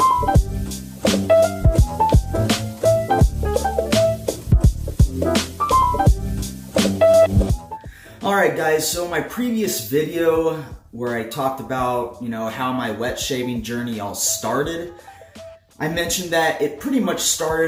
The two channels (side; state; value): both; identical; correlation 1.00